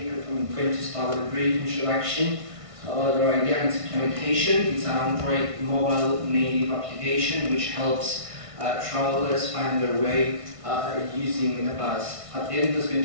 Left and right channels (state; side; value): late; left; 1.5 ms